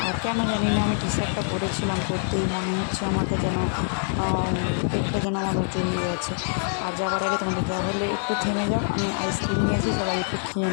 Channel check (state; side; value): silent; right; digital silence